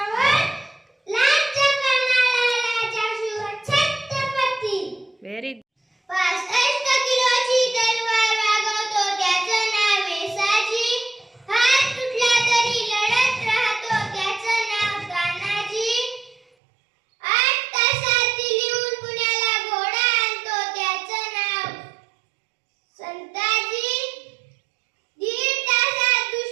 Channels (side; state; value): left; drops out; at 16.4 s